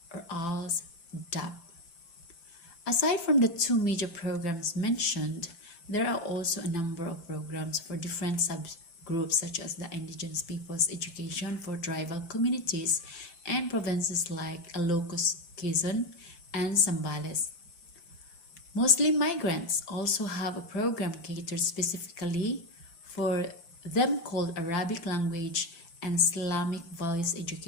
or ALS DAP. Aside from the two major programs mentioned, there are also a number of programs for different subgroups such as the Indigenous Peoples Education for tribal communities and provinces like Ilocos, Quezon, and Zambales. Muslim migrants also have a program catered specifically for them called Arabic Language and Islamic Values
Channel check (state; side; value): late; right; 5.8 ms